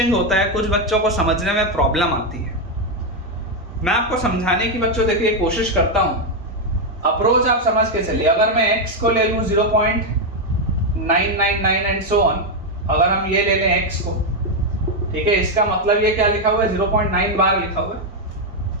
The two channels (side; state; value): both; normal; correlation 0.03